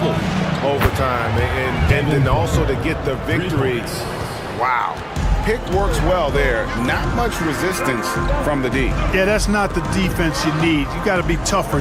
overtime. And then also to get the victory. Wow. Pick works well there. Not much resistance from the D. Yeah, that's not the defense you need. You got to be tougher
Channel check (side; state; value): both; identical; correlation 1.00